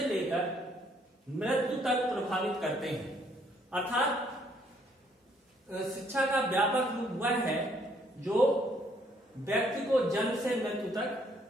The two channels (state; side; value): normal; both; correlation 0.67